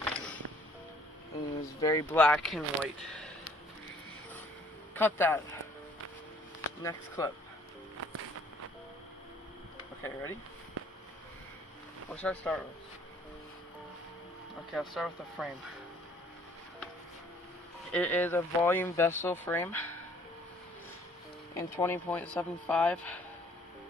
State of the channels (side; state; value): both; normal; correlation 0.59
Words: And it was very black and white. Cut that. Next clip. Okay, ready? What should I start with? Okay, I'll start with the frame. It is a volume vessel frame in 20.75.